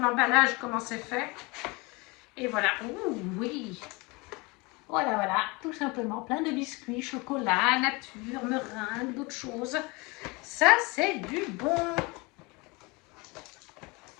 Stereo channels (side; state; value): right; quieter; 26.2 dB